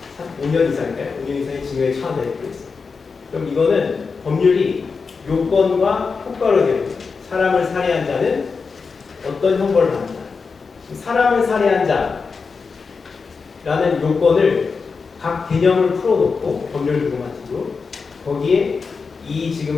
5년 이상인가요? 5년 이상의 징역에 처한다 이렇게 있습니다. 그럼 이거는 법률이 요건과 효과로 되어 있습니다. 사람을 살해한 자는 어떤 형벌을 받는다. 사람을 살해한 자라는 요건을 각 개념을 풀어놓고 법률 기본가지고 거기에 이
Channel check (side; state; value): right; quieter; 4.9 dB